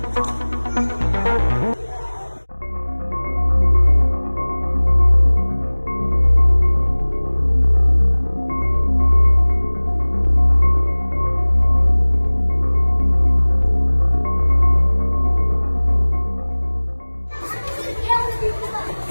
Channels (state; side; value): inverted; both; correlation -1.00